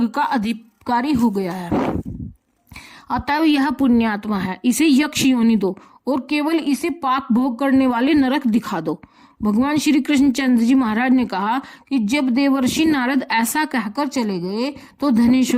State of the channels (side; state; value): both; identical; correlation 1.00